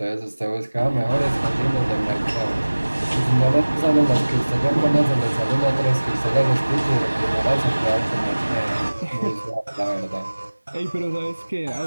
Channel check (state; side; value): inverted; both; correlation -1.00